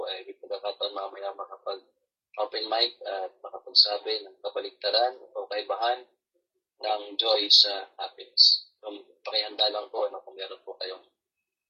ay may pagkakataon mamaya makapag-open mic at makapagsabi ng kabaligtaran o kaibahan ng joy sa happiness. So pakihanda lang po kung meron po kayong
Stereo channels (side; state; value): both; identical; correlation 1.00